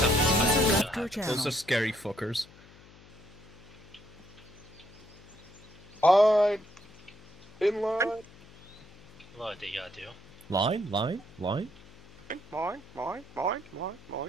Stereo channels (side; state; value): left; noise; hum, 23 dB below the sound